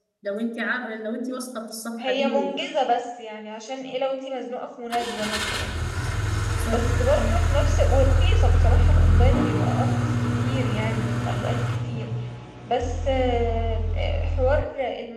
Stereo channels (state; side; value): identical; both; correlation 1.00